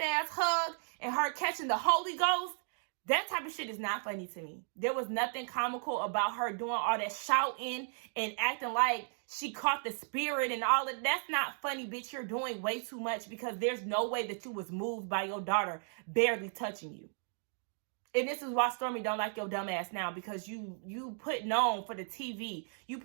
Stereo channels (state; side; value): silent; left; 54 dB below the other